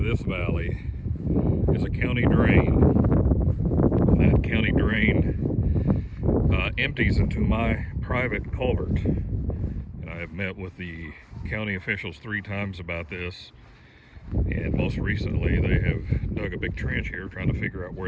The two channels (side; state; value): both; identical; correlation 1.00